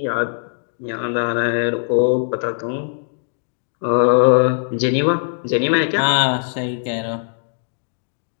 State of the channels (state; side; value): silent; right; digital silence